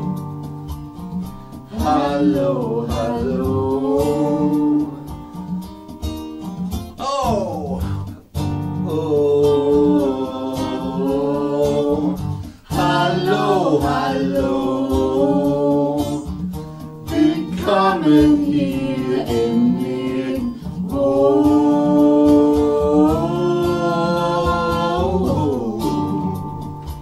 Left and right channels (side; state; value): both; identical; correlation 1.00